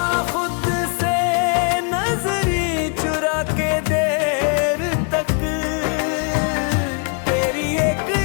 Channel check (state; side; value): quieter; right; 37.7 dB